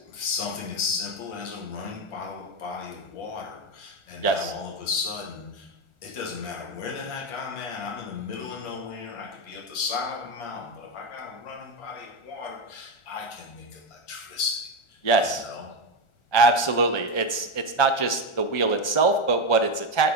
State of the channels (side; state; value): right; late; 1.4 ms